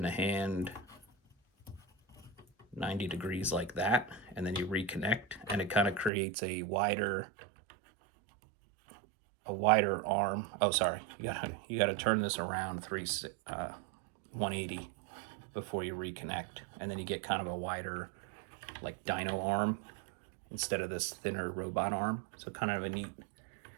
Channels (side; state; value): left; drops out; at 6.1 s